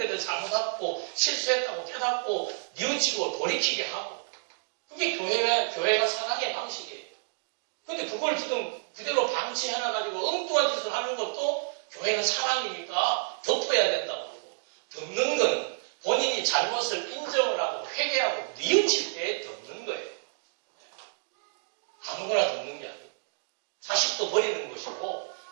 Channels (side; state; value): left; silent; digital silence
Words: 대해 잘못하고 실수했다고 깨닫고 뉘우치고 돌이키게 하고 그게 교회가 사랑의 방식이에요. 근데 그걸 지금 그대로 방치해놔가지고 엉뚱한 짓을 하는 것도 교회는 사랑이니까 덮어야 된다고 그러고 덮는 건 본인이 잘못을 인정을 하고 회개하고 뉘우칠 때 덮는 거예요. 아무거나 덮는 게 아니에요. 자식도 버리는 것이고